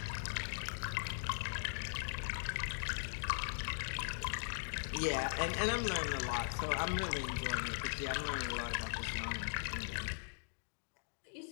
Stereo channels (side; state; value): right; silent; digital silence